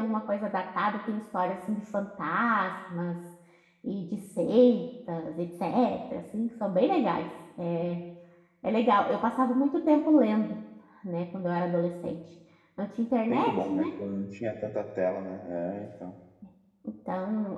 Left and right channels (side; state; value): both; identical; correlation 1.00